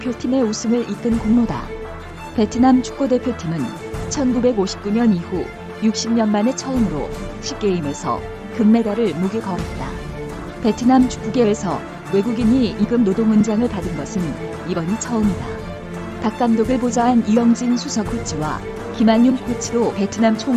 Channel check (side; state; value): both; identical; correlation 1.00